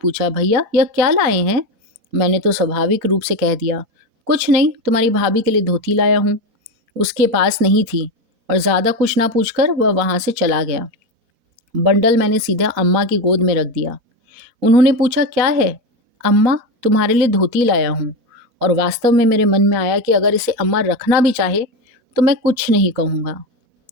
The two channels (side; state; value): left; late; 4.2 ms